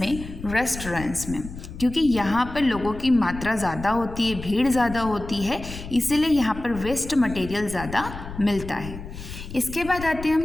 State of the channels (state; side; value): noise; left; rumble, 11 dB below the sound